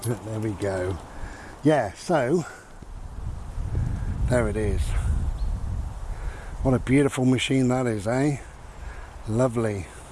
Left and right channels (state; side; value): identical; both; correlation 1.00